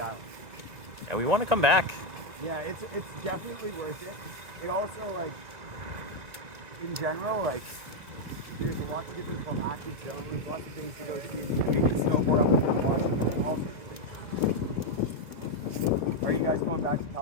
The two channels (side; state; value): left; late; 2.1 ms